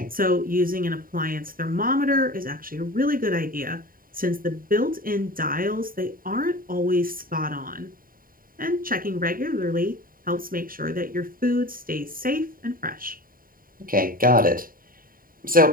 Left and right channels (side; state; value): left; late; 0.41 ms